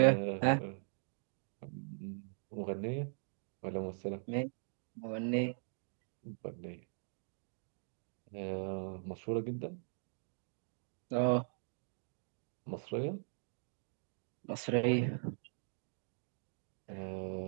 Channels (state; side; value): silent; left; digital silence